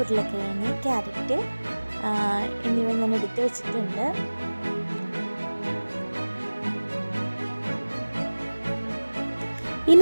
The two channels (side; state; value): both; inverted; correlation -1.00